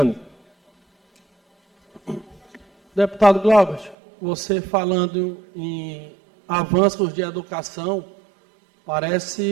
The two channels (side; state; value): left; drops out; at 4.0 s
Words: Deputado Glauber, você falando em avanços de educação,